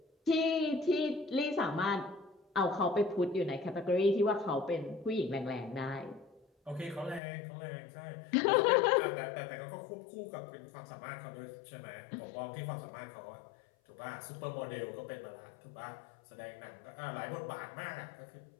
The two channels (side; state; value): right; drops out; at 7.2 s